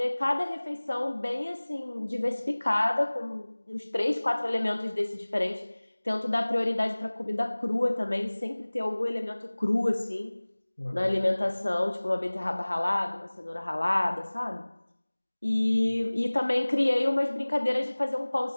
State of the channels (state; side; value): inverted; both; correlation -1.00